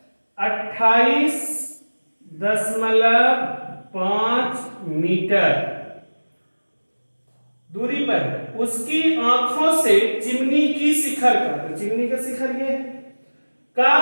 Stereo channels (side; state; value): both; inverted; correlation -1.00